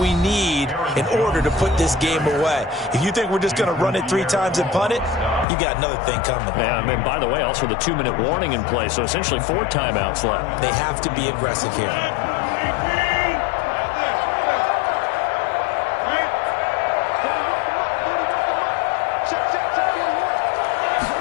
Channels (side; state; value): right; drops out; at 5.5 s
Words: need in order to put this game away. If you think we're just going to run it 3 times and punt it, you got another thing coming. Yeah, I mean, by the way, also the 2-minute warning in play, so essentially 4 timeouts left. They have to be aggressive here.